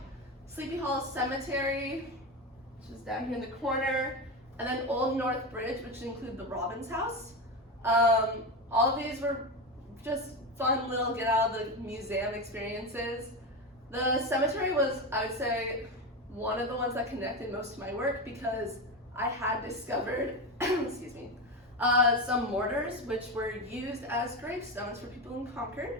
Sleepy Hollow Cemetery, which is down here in the corner, and then Old North Bridge, which include the Robbins House. All of these were just fun little get out of the museum experiences. The cemetery was, I would say, one of the ones that connected most to my work because I had discovered, excuse me, some mortars which were used as gravestones for people in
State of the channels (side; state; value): both; normal; correlation 0.18